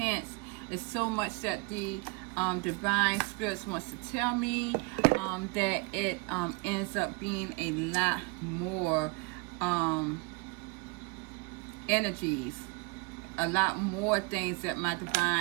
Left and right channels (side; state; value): left; quieter; 28.8 dB